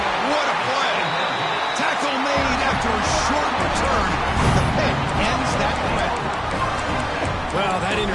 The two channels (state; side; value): identical; both; correlation 1.00